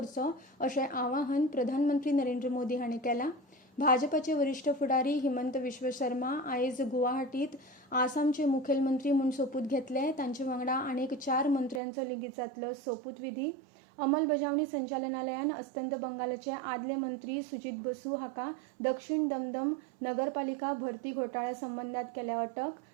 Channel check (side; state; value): left; drops out; at 11.8 s